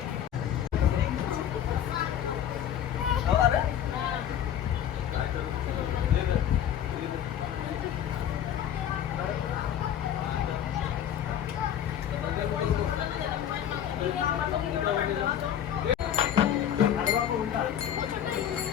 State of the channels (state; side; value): quieter; right; 10.0 dB